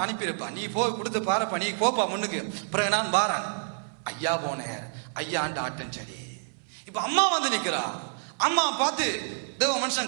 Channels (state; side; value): silent; left; 59 dB below the other